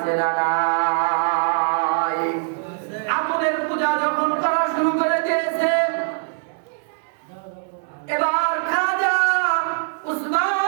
না নাই? আগুনের পূজা যখন করা শুরু করে দিয়েছে, এবার খাজা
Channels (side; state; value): left; silent; 64 dB below the other